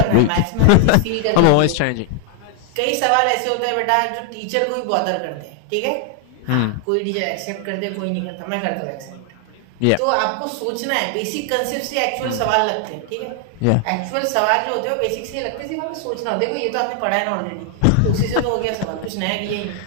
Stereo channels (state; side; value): different; both; correlation 0.00